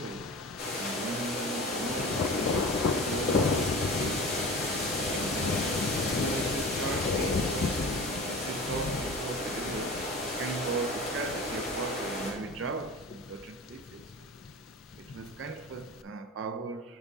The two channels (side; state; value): both; normal; correlation 0.35